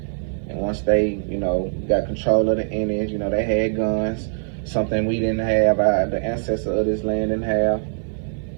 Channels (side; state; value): left; silent; 58 dB below the other